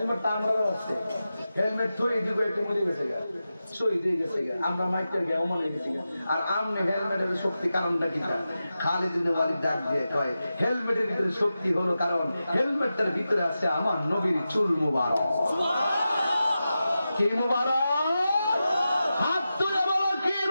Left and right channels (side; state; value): both; inverted; correlation -0.92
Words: আমরাও আছে হেলমেট থই দিব একটু মরে গেছে গা শহীদ হয়ে গেছে গা আমরা মাইটার গে অমর হয়ে গেছি আর আমনে হেলমেটের শক্তি কারণটা কি খালিদ ইবনে ওয়ালিদ ডাক দিয়ে কয় হেলমেটের ভিতরে শক্তি হলো কারণ হেলমেটটার ভিতরে আছে আমার নবীর চুল মুবারক কি মুবারক হাত তুলে বলো কি